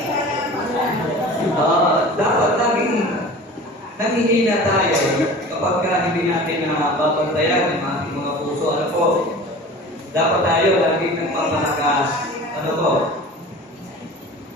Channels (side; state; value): both; normal; correlation 0.39